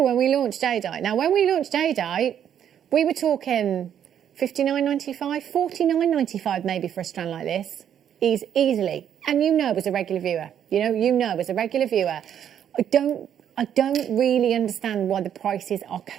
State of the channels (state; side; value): quieter; left; 9.4 dB